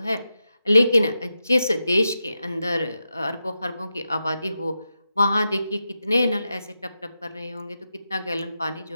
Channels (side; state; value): both; inverted; correlation -0.89